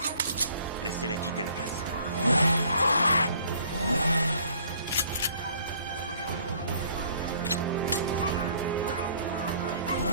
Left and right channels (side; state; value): both; inverted; correlation -0.58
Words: Laissez-les quitter la place.